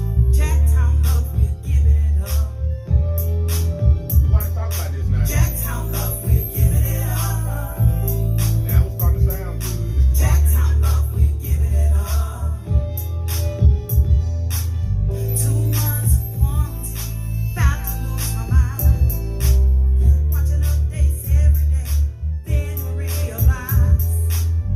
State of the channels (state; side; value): identical; both; correlation 1.00